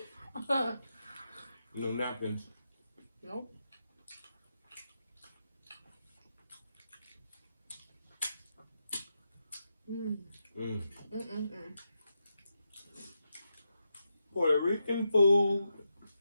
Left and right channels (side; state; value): both; inverted; correlation -0.86